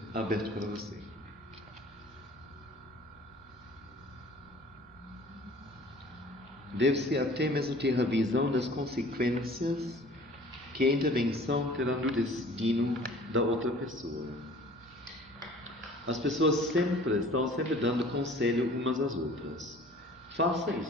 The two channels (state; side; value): normal; both; correlation 0.49